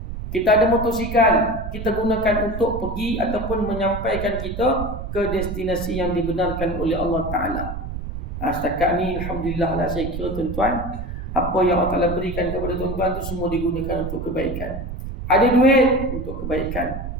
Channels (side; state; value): right; noise; rumble, 7 dB below the sound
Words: Kita ada motosikal, kita gunakan untuk pergi ataupun menyampaikan kita ke destinasi yang dibenarkan oleh Allah Ta'ala. Setakat ni Alhamdulillah lah, saya kira tuan-tuan, apa yang Allah Ta'ala berikan kepada tuan-tuan tu semua digunakan untuk kebaikan. Ada duit untuk kebaikan,